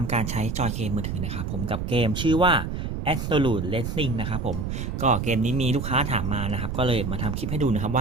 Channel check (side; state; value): right; noise; rumble, 4 dB below the sound